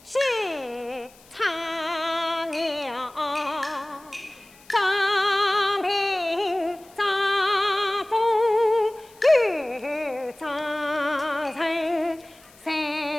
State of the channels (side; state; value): left; noise; hiss, 26 dB below the sound